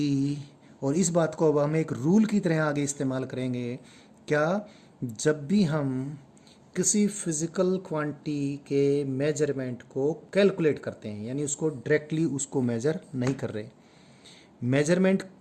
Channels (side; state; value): both; identical; correlation 1.00